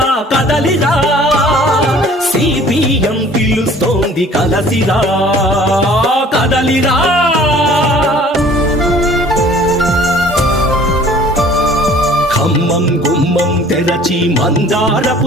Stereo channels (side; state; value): both; normal; correlation 0.51